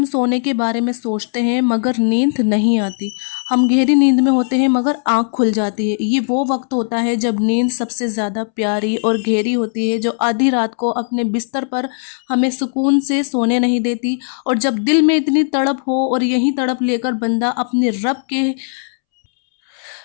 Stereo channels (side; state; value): right; silent; 68 dB below the other